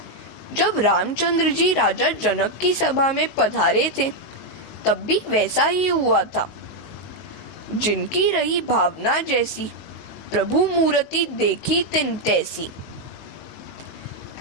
जब रामचंद्र जी राजा जनक की सभा में पधारे थे तब भी वैसा ही हुआ था। जिनकी रही भावना जैसी, प्रभु मूर्ति देखी तिन तैसी।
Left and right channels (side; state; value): right; late; 19 ms